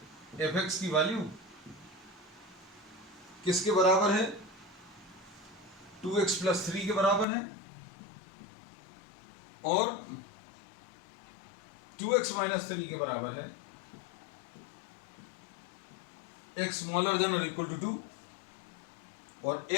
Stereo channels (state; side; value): drops out; right; at 7.2 s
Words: एफ एक्स की वैल्यू किसके बराबर है, 2x प्लस 3 के बराबर है, और 2x माइनस 3 के बराबर है, x स्मॉलर देन और इक्वल टू 2, और